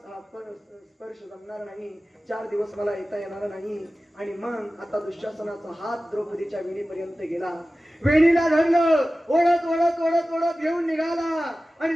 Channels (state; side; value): normal; both; correlation 0.96